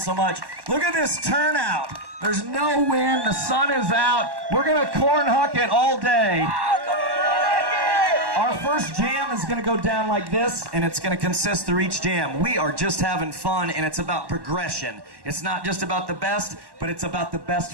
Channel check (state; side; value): late; left; 1.1 ms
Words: much. Look at this turnout. There's no wind. The sun is out. We're going to cornhucket all day. Our first jam is going to go down like this, and it's going to consist through each jam. We are just having fun, and it's about progression. It's not just about the best, but it's about the best